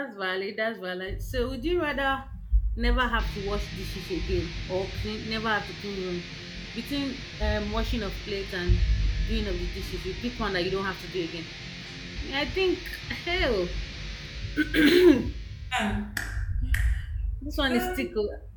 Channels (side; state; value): both; identical; correlation 1.00